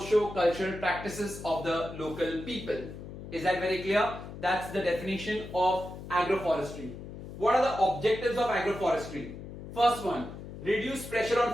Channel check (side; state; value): left; noise; hum, 11 dB below the sound